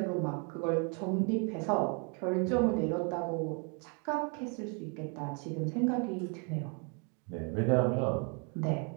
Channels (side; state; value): left; quieter; 36.6 dB